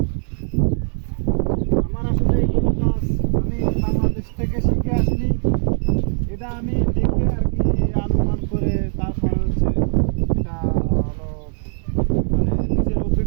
আমার আসলে এইগুলো কাজ আমি বাংলাদেশ থেকে শিখে আসিনি, এটা আমি দেখে আর কি অনুমান করে তারপরে হচ্ছে এটা হলো মানে নিজের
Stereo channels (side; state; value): left; silent; digital silence